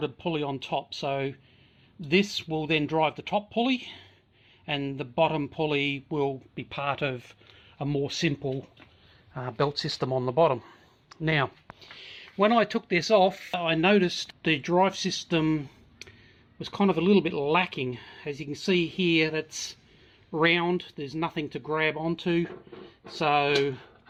a pulley on top. So this will then drive the top pulley, and the bottom pulley will be part of a more simple belt system on the bottom. Now, when I took this off, I noticed the drive system was kind of a little bit lacking. As you can see here, that's round, there's nothing to grab onto. So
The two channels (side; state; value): both; identical; correlation 1.00